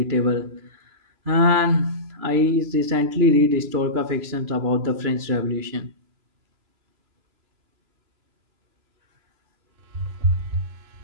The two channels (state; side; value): late; left; 3.0 ms